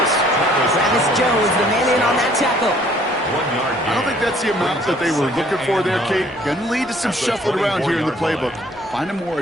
Travis Jones, the man in on that tackle. I don't think that's the amount that they were looking for there, Kate. Going to lead to some shuffling around here in the playbook. Find a more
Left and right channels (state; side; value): noise; right; hum, 29 dB below the sound